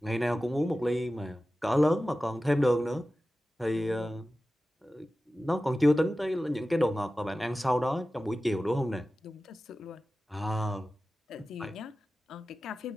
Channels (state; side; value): normal; both; correlation 0.95